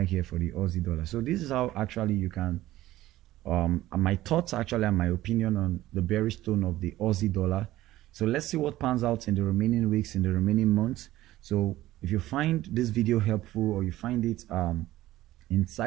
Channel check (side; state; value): left; quieter; 15.6 dB